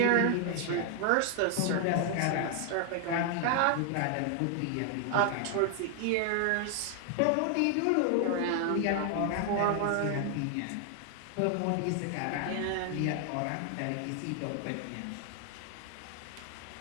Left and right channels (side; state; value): both; different; correlation 0.00